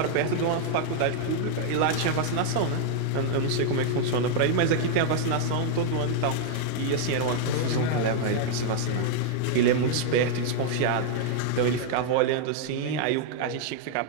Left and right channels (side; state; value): both; different; correlation 0.00